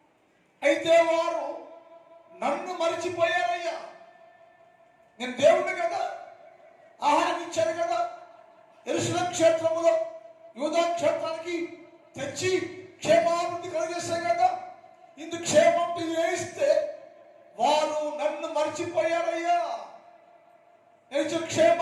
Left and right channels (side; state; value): both; identical; correlation 1.00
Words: అయితే వారు నన్ను మరిచిపోయారయ్యా. నేను దేవుడిని కదా, ఆహారం ఇచ్చాను కదా, యెరూషలేము క్షేత్రములో యూదా క్షేత్రానికి తెచ్చి క్షేమాభివృద్ధి కలిగేశాను కదా. ఇందుకు క్షేమం వేయిస్తే వారు నన్ను మర్చిపోయారయ్యా. నేను